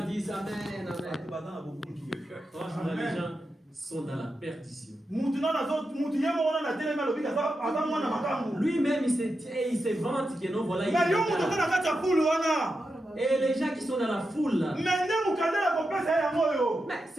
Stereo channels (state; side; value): normal; both; correlation 0.88